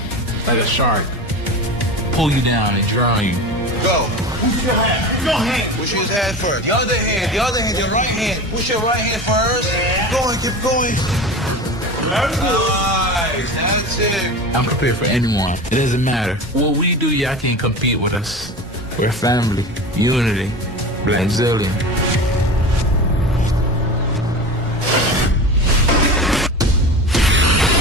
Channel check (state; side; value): normal; both; correlation 0.31